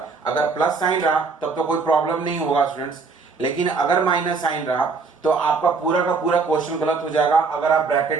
अगर प्लस साइन रहा तब तो कोई प्रॉब्लम नहीं होगा स्टूडेंट्स, लेकिन अगर माइनस साइन रहा तो आपका पूरा का पूरा क्वेश्चन गलत हो जाएगा अगर आप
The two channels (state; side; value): quieter; left; 4.6 dB